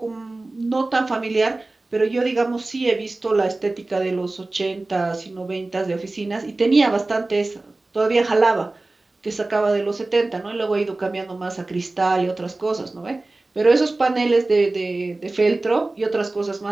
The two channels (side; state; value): left; quieter; 3.1 dB